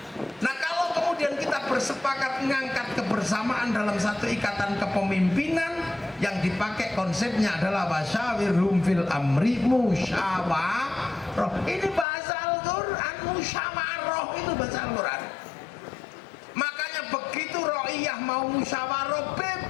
Nah, kalau kemudian kita bersepakat mengangkat kebersamaan dalam satu ikatan kepemimpinan, yang dipakai konsepnya adalah wasyawirhum fil amri, musyawarah. Ini bahasa Al-Quran, musyawarah itu bahasa Al-Quran. Makanya begitu Ro'iyah mau musyawarah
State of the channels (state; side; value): drops out; right; at 12.1 s